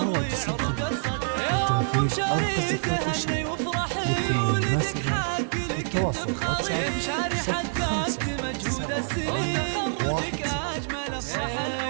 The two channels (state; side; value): silent; left; digital silence